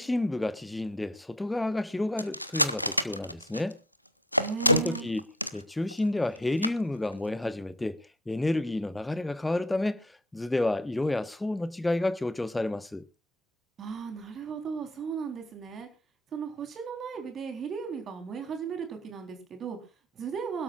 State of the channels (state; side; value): normal; both; correlation 0.47